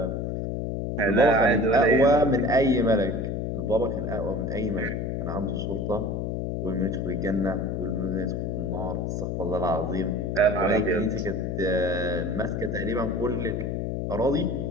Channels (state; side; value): noise; left; hum, 2 dB below the sound